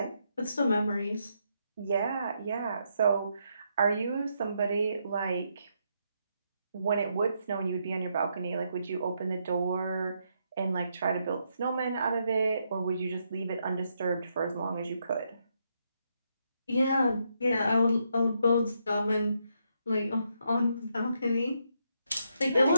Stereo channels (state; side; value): inverted; both; correlation -0.78